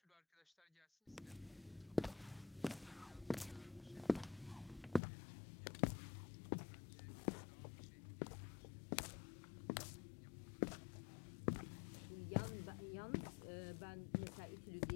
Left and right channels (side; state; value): right; drops out; at 5.0 s